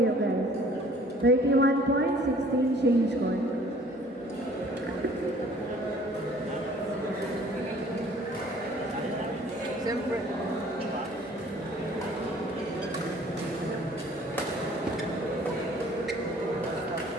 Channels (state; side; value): normal; both; correlation 0.54